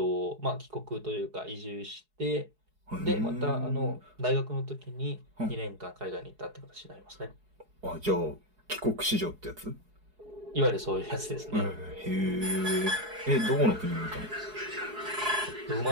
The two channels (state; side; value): late; left; 4.7 ms